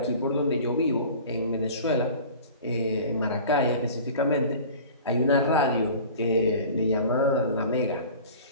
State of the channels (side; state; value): both; inverted; correlation -0.41